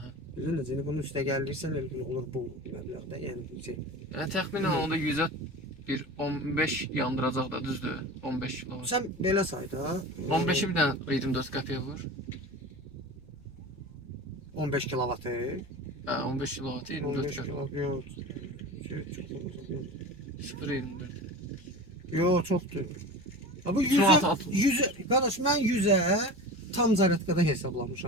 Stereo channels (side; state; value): left; noise; rumble, 25 dB below the sound